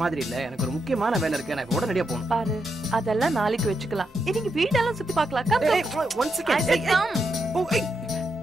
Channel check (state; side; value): normal; both; correlation 0.83